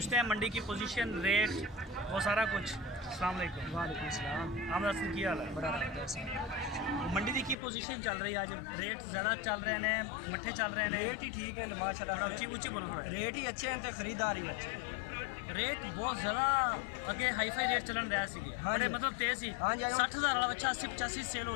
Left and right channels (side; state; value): right; drops out; at 7.6 s